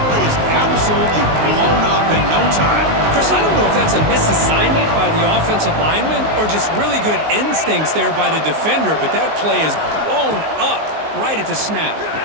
play is absolutely blown up in no time. Chris, I don't know if that's a misassignment by the offensive lineman or just really good instincts there by the defender, but that play is blown up right at the snap.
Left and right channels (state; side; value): late; left; 19 ms